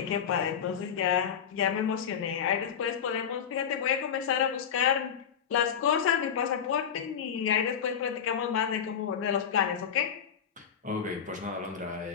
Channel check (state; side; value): quieter; right; 8.0 dB